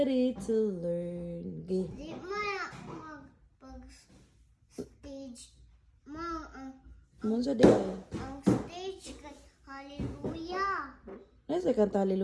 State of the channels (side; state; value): both; identical; correlation 1.00